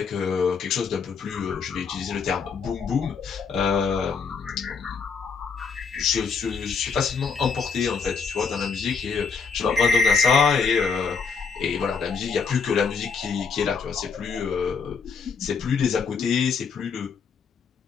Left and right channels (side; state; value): right; quieter; 5.5 dB